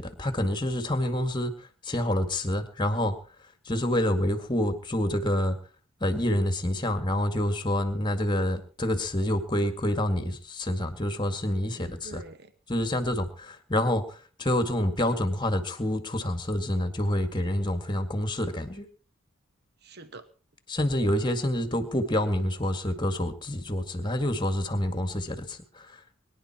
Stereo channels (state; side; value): normal; both; correlation 0.72